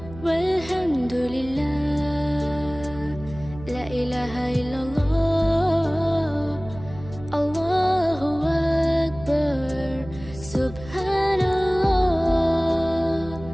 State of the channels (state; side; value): noise; right; hum, 16 dB below the sound